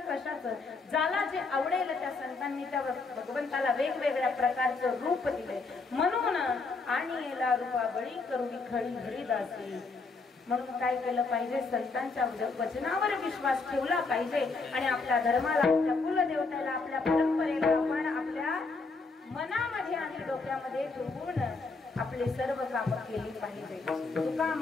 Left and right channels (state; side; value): quieter; right; 4.0 dB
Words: कशाचं. ज्याला जे आवडेल त्या संतांनी त्या भगवंताला वेगवेगळ्या प्रकारचं रूप दिलंय. म्हणून आणि याला रूपाबळी करुणी खडी हरिदासी. म्हणून काय केलं पाहिजे? संतांच्या वचनावर विश्वास ठेवला पाहिजे आणि आपल्या धर्माला, आपल्या कुलदेवतेला, आपल्या परंपरेला आपण आपल्या मनामध्ये आणि डोक्यामध्ये ठेवून आपले सर्व कामं केली पाहिजे. तुका